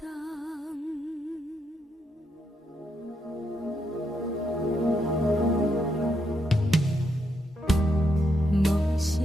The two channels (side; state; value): both; normal; correlation 0.80